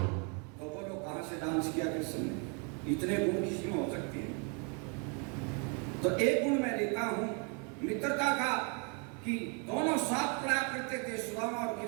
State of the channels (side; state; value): left; quieter; 36.4 dB